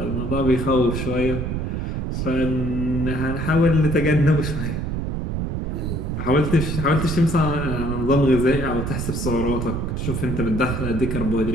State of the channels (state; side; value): noise; right; rumble, 2 dB below the sound